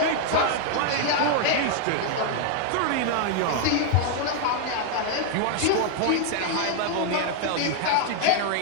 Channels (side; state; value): both; different; correlation 0.00